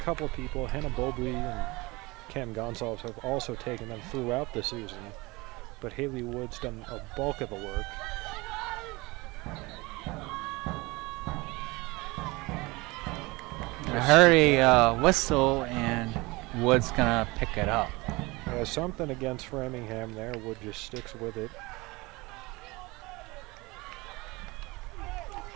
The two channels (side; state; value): left; quieter; 23.3 dB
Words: of people, Hannah Bobley and Cam Gonsalves, have also taken them throughout the season, but Haley Wood's done a bulk of the work. I heard a whistle, and Wood's gonna pick it up. Yeah, something against Framingham there. Wood just sticks with it.